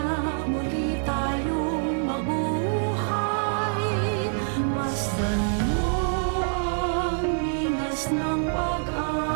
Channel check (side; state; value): left; silent; digital silence